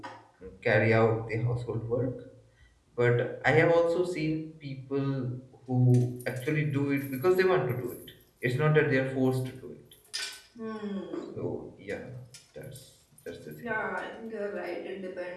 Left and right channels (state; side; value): identical; both; correlation 1.00